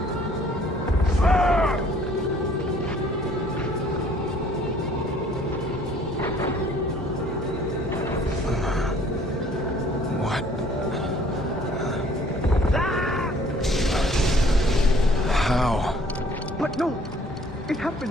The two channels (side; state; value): both; normal; correlation 0.57